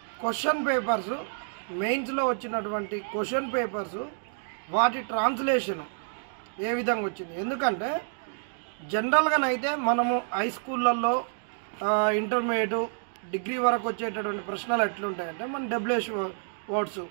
క్వశ్చన్ పేపర్స్, మెయిన్స్లో వచ్చినటువంటి క్వశ్చన్ పేపర్స్, వాటి ట్రాన్స్లేషన్ ఏ విధంగా వచ్చింది. ఎందుకంటే జనరల్గానైతే మనము హై స్కూళ్ళల్లో ఇంటర్మీడియట్ డిగ్రీ వరకు వచ్చేటటువంటి ప్రశ్నలు ఎట్లుంటాయంటే మన డబ్ల్యూహెచ్ వర్డ్స్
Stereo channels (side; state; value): left; silent; digital silence